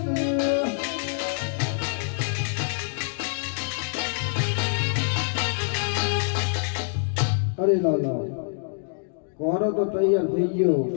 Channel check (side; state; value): right; silent; digital silence